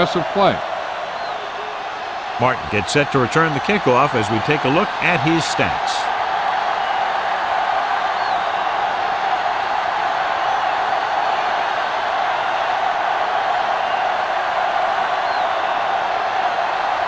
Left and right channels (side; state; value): both; identical; correlation 1.00